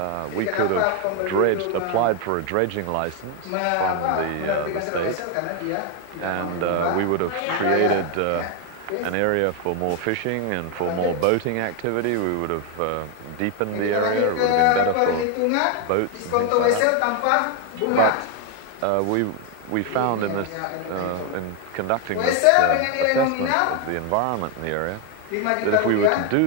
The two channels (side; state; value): both; different; correlation 0.01